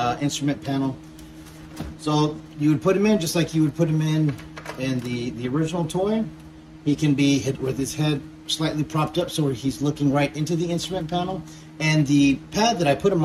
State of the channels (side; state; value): both; identical; correlation 1.00